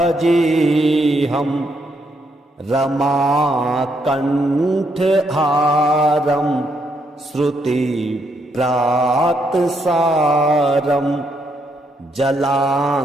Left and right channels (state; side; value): normal; both; correlation 0.76